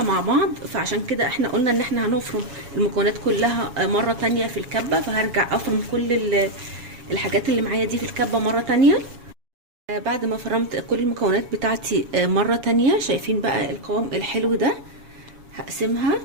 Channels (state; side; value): late; left; 7.2 ms